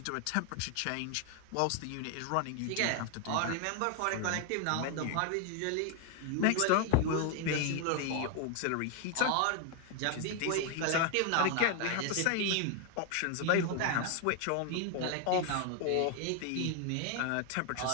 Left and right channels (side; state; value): both; different; correlation 0.01